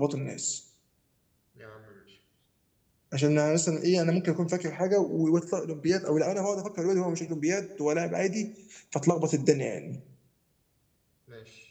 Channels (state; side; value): identical; both; correlation 1.00